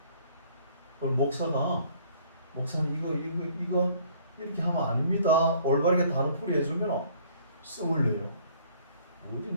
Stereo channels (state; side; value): inverted; both; correlation -0.58